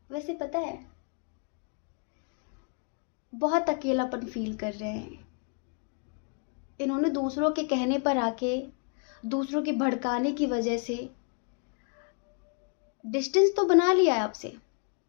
वैसे पता है, बहुत अकेलापन फील कर रहे हैं। इन्होंने दूसरों के कहने पर आके, दूसरों के भड़काने की वजह से डिस्टेंस तो बना लिया है आपसे,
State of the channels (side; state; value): right; quieter; 39.0 dB